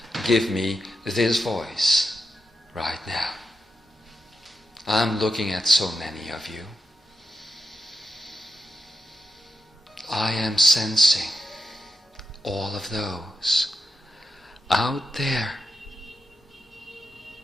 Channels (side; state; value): both; normal; correlation 0.88